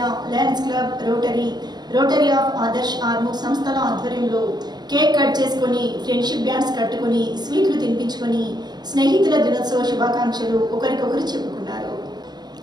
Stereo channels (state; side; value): late; left; 0.20 ms